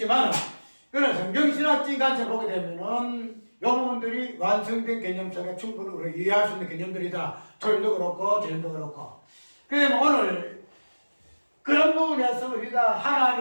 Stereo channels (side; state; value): both; inverted; correlation -1.00